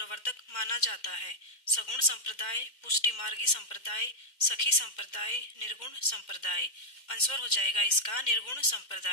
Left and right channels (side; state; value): right; late; 2.1 ms